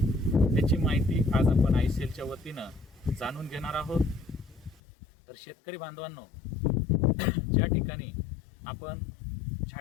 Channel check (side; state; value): right; drops out; at 4.8 s